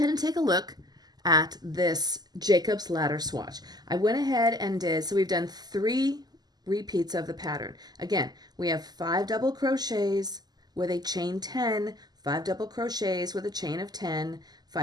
and take a look at this Jacobs Ladder swatch. I went ahead and did, so we've done 3 repeats of the pattern. Again, we have 5 double crochets with a chain 10, 5 double crochets with a chain of 10,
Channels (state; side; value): late; left; 0.20 ms